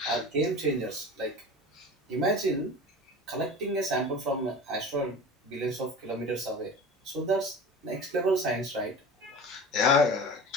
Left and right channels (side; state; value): both; normal; correlation 0.35